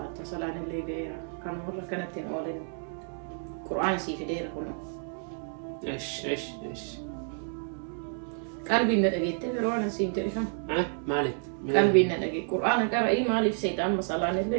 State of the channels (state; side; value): silent; left; 57 dB below the other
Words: صلاة اللي جاية كان مرة كانت تنقولين قرآن سي كدير كله إيش قلبي ندقيت برونا سيم تلفون مالك قلبي ندقيت قرآن قرأي مالك سيد أما صلاة